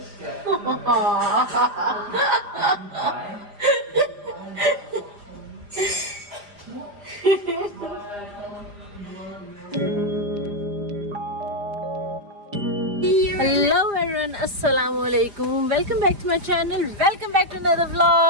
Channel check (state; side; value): late; left; 4.9 ms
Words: everyone, assalamu alaikum. Welcome back to my channel. Welcome back to another